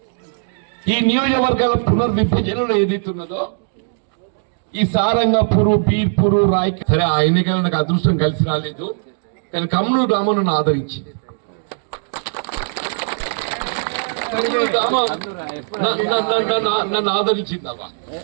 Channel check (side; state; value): left; silent; digital silence